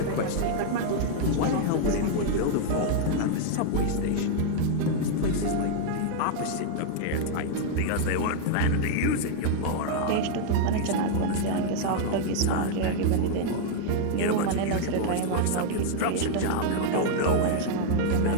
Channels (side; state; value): both; different; correlation -0.01